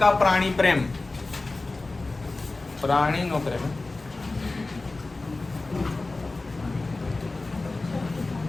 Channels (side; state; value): right; quieter; 3.3 dB